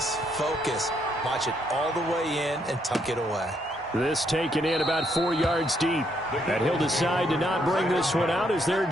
focus. Watch it all the way in and tuck it away. This taken in about 4 yards deep. And he'll decide to not bring this one out as their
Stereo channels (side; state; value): both; normal; correlation 0.74